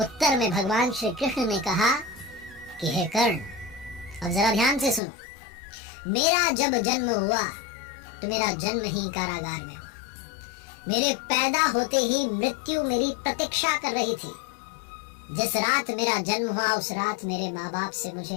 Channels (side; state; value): right; drops out; at 5.0 s